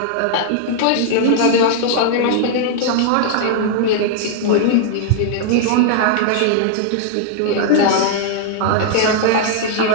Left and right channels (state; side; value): different; both; correlation -0.01